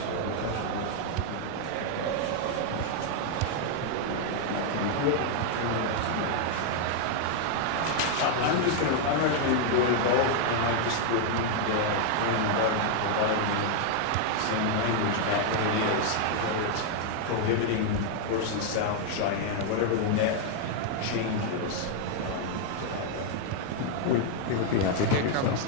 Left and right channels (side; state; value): both; different; correlation 0.00